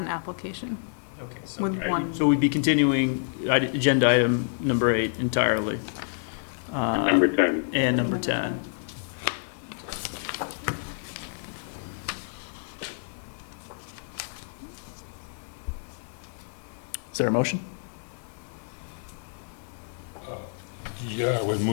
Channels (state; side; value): silent; right; 55 dB below the other